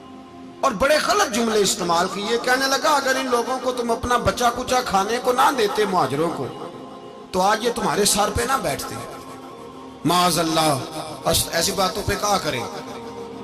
اور بڑے غلط جملے استعمال کیے۔ کہنے لگا، اگر ان لوگوں کو تم اپنا بچا کچا کھانے کو نہ دیتے مہاجروں کو تو آج یہ تمہارے سر پہ نہ بیٹھتے۔ معاذ اللہ، ایسی باتوں پہ کہا کریں،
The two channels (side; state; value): both; identical; correlation 1.00